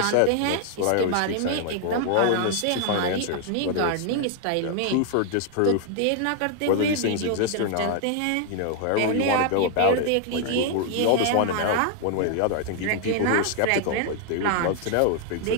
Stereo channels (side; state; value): both; different; correlation 0.00